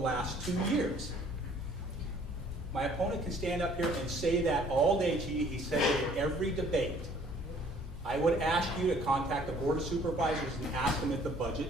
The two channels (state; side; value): normal; both; correlation 0.57